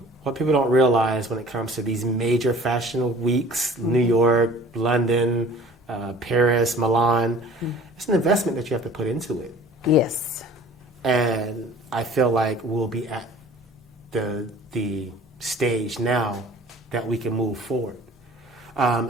people don't realize when it comes to these major fashion weeks, New York, London, Paris, Milan, it's an investment that you have to put into it. Yes. And I feel like we'll be at the stage now that we can move forward. I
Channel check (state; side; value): normal; both; correlation 0.47